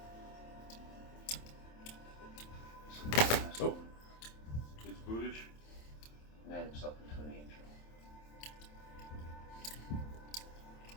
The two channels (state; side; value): late; right; 27 ms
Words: Oh. It's Budish. Made himself into an angel.